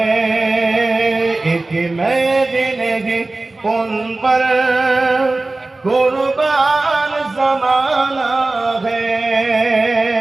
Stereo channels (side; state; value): left; quieter; 3.1 dB